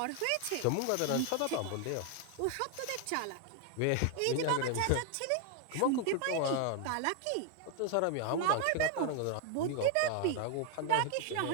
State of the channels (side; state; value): both; different; correlation 0.00